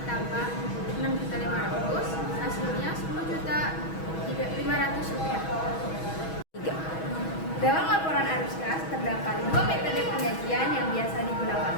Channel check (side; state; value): right; late; 6.2 ms